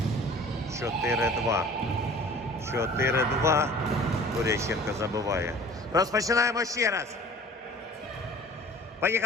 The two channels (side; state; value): both; normal; correlation 0.47